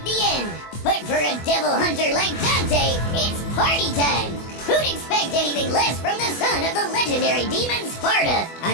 the end, but for a devil hunter like Dante, it's party time. Who'd expect anything less from the son of the legendary demon Sparta?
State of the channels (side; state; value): right; late; 24 ms